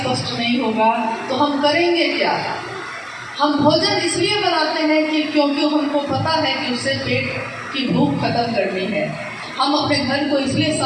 नहीं होगा, तो हम करेंगे क्या। हम भोजन इसलिए बनाते हैं कि क्योंकि हमको पता है कि उससे पेट की भूख खत्म करनी है। हम अपने घर को इसलिए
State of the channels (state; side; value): identical; both; correlation 1.00